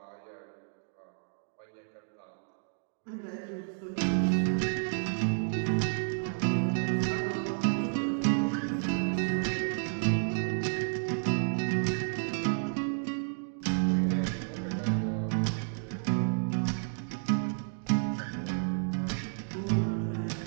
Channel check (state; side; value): silent; left; digital silence